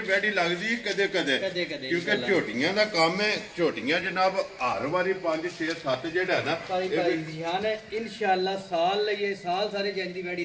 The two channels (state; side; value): identical; both; correlation 1.00